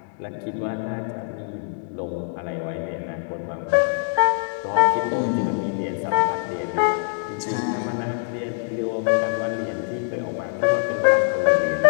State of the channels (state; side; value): silent; right; digital silence